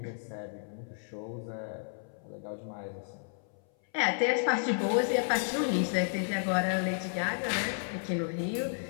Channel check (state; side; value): silent; right; 56 dB below the other